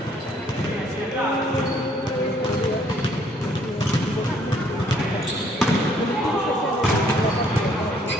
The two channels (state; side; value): normal; both; correlation 0.64